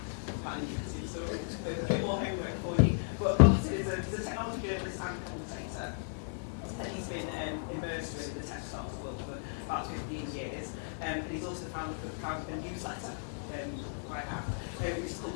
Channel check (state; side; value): silent; right; digital silence